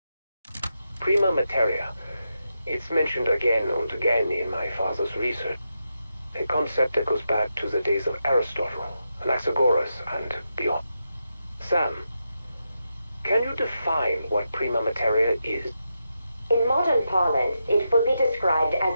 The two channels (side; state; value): both; inverted; correlation -0.86